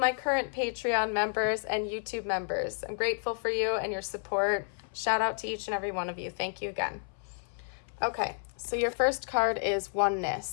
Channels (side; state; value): right; silent; 57 dB below the other